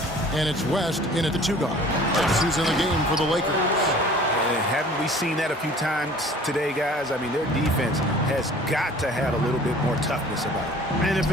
And it's West in at the 2-guard. That's who's in the game for the Lakers. And haven't we seen that a few times today, guys? I mean, their defense has got to have a little bit more toughness about it. And if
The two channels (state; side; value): normal; both; correlation 0.48